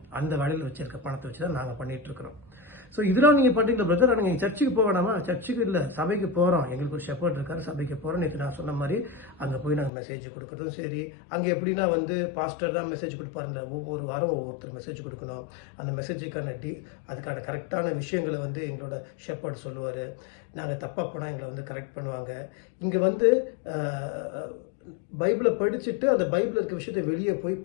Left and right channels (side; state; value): right; drops out; at 9.9 s